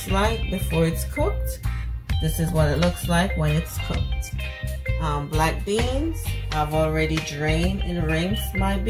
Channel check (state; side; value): identical; both; correlation 1.00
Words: like before it's cooked. This is what it looks like when it's cooked. Black beans. I've already drained and rinsed my